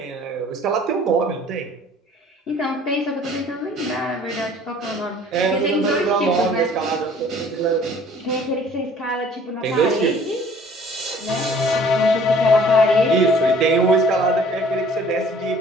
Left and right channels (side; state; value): both; normal; correlation 0.53